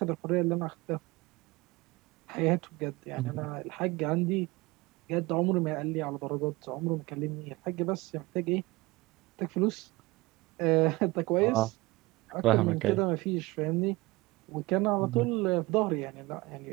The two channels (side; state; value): left; quieter; 21.9 dB